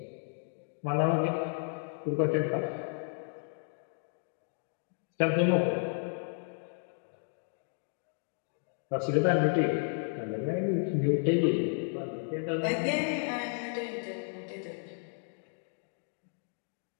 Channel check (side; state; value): right; silent; 56 dB below the other